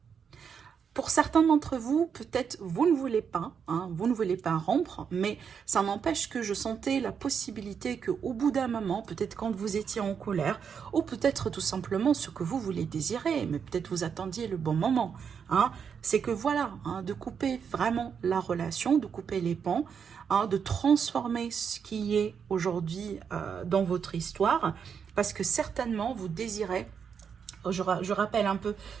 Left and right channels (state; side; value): quieter; left; 6.9 dB